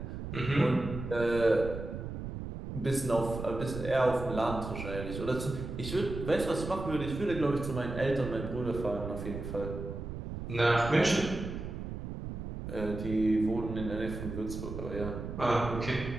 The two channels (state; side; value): noise; right; rumble, 7 dB below the sound